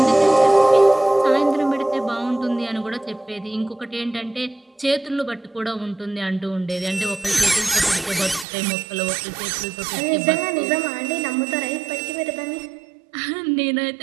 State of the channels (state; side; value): drops out; left; at 8.5 s